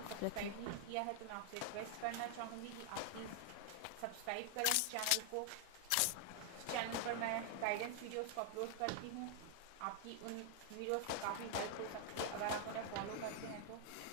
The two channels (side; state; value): both; different; correlation 0.00